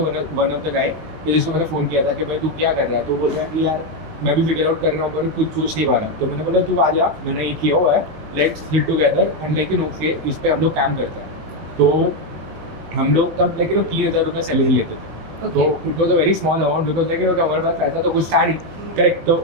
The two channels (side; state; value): left; late; 19 ms